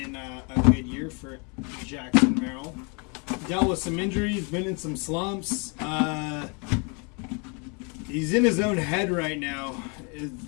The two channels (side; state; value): right; quieter; 33.9 dB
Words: a good year for Jackson Merrill. Dealt with some injuries, been in some slumps. He's in his own head right now.